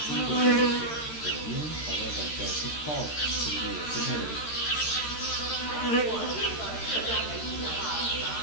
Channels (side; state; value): right; late; 13 ms